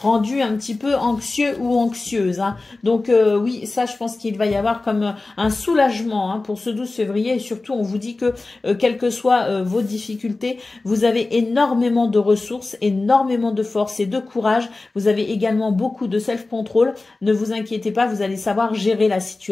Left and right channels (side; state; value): right; quieter; 3.3 dB